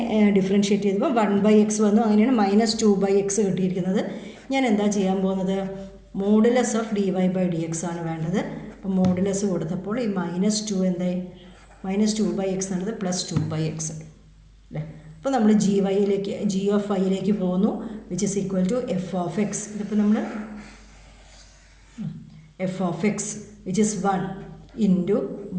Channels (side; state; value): both; identical; correlation 1.00